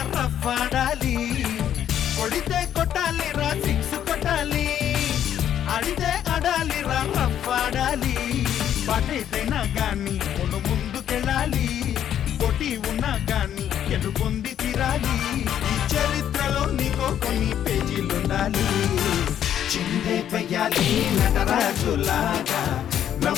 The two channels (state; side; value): quieter; right; 10.2 dB